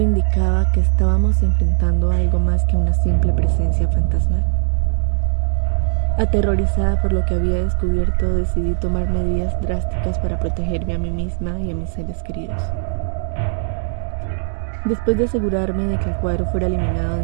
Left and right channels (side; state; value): left; silent; digital silence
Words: que estábamos enfrentando a algo más que una simple presencia fantasmal. Aterrorizada por lo que había descubierto, decidí tomar medidas drásticas para protegerme a mí misma y a mis seres queridos. Después de asegurarme de que el cuadro fuera eliminado